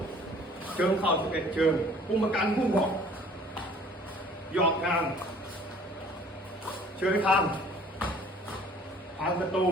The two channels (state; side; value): normal; both; correlation 0.53